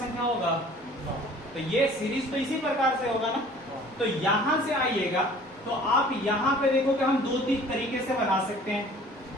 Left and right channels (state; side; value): normal; both; correlation 0.49